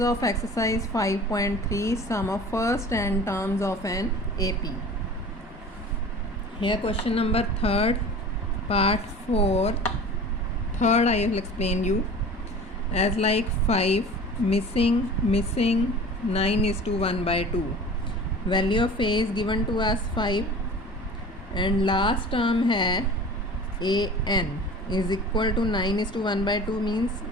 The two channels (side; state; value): both; normal; correlation 0.40